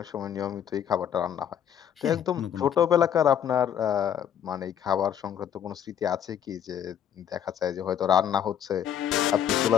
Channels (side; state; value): right; quieter; 9.3 dB